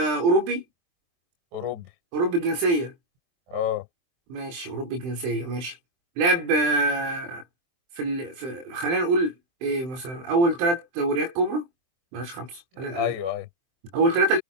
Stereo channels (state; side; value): late; left; 23 ms